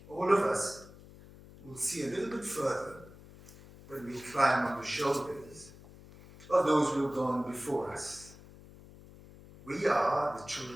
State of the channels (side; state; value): left; noise; hum, 20 dB below the sound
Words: All of us will see a little bit further when we climb on the shoulders of those who have gone before us. We are the